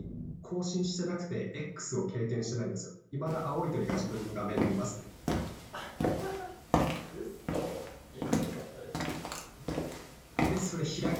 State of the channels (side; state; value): both; identical; correlation 1.00